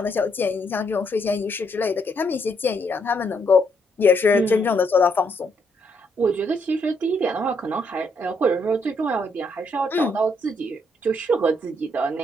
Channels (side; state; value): both; normal; correlation 0.74